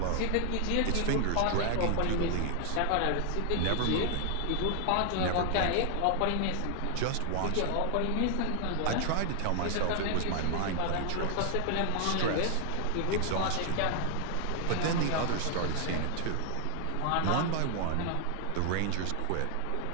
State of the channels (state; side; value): different; both; correlation 0.00